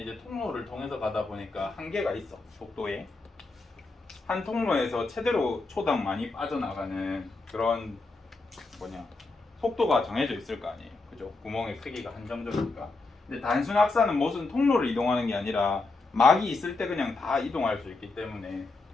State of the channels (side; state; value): right; quieter; 3.6 dB